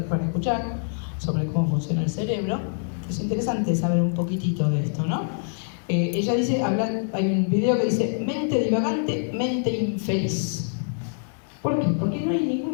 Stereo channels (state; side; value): silent; right; digital silence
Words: para escuchar sobre cómo funciona el cerebro. Es interesante saber un poquitito de esto, ¿no? Ella dice, hay un video que dice, mente divagante, mente infeliz. ¿Por qué? Porque no hay